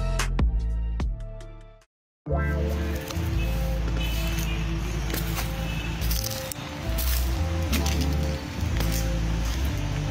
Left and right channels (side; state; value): both; identical; correlation 1.00